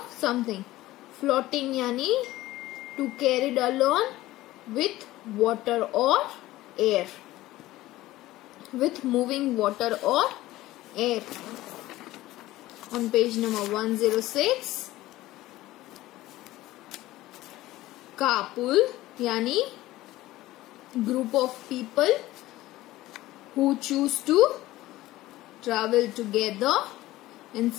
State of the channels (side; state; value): right; quieter; 16.7 dB